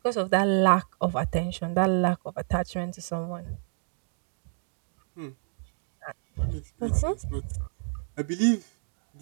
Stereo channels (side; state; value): left; silent; 59 dB below the other